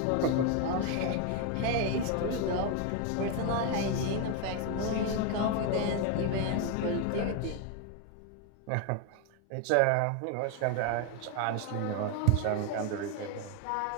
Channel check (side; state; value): both; different; correlation 0.01